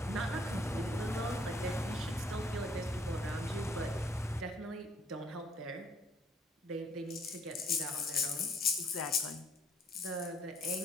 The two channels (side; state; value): both; normal; correlation 0.64